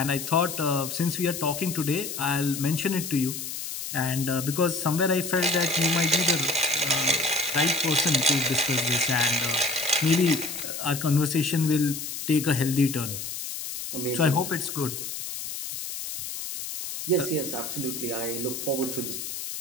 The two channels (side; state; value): left; noise; hiss, 7 dB below the sound